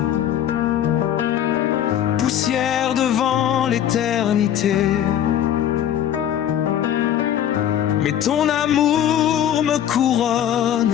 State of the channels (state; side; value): quieter; right; 10.5 dB